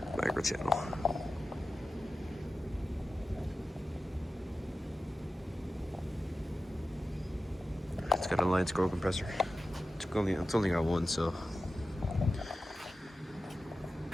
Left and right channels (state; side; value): normal; both; correlation 0.93